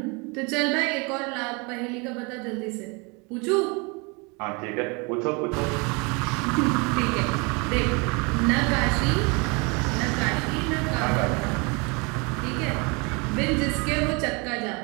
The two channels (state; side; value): quieter; left; 29.9 dB